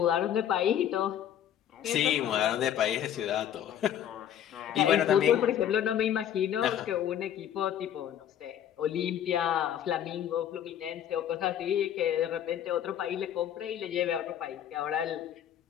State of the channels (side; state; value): right; quieter; 10.1 dB